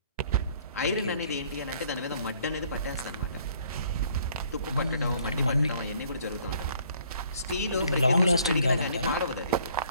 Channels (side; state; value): both; inverted; correlation -0.60